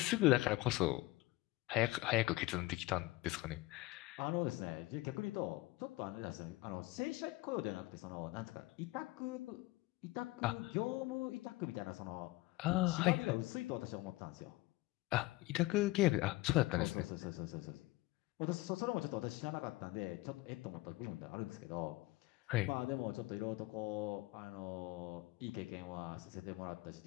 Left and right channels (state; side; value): quieter; right; 20.4 dB